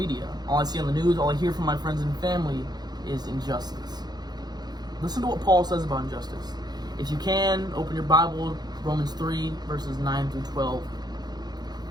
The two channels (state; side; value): late; left; 0.20 ms